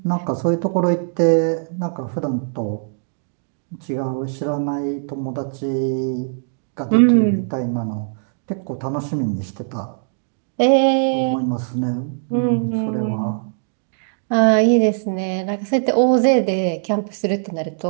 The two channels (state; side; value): silent; left; 65 dB below the other